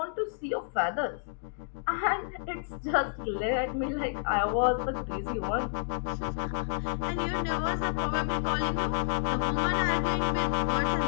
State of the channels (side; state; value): right; silent; digital silence